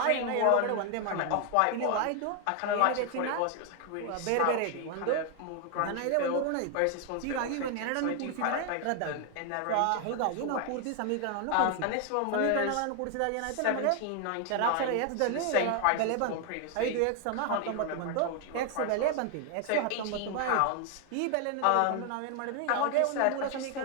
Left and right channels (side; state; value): both; different; correlation 0.00